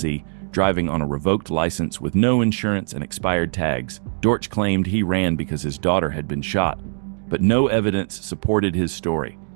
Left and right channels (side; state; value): left; silent; digital silence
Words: driving on a revoked license with no insurance and expired tags. Dortch claimed he ran because his daughter had been shot, but no evidence supported his story.